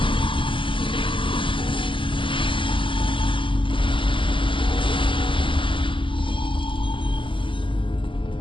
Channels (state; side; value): late; right; 0.25 ms